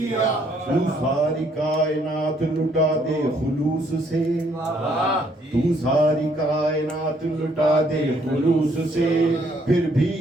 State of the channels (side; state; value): both; normal; correlation 0.67